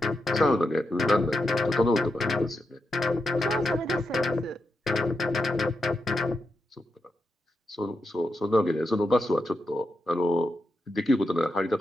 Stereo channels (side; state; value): both; normal; correlation 0.86